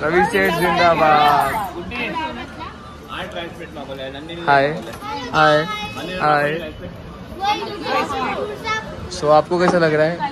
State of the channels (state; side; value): identical; both; correlation 1.00